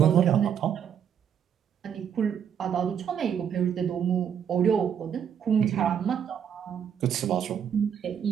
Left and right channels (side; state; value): left; quieter; 8.4 dB